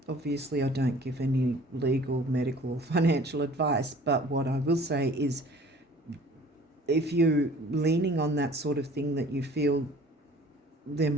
Obviously, I don't give any legal, medical, or financial advice, but what I will say is, if you're leaning on that sort of thing, that you feel there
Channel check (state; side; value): normal; both; correlation 0.49